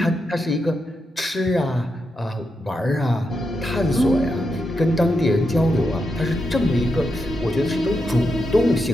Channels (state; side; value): normal; both; correlation 0.85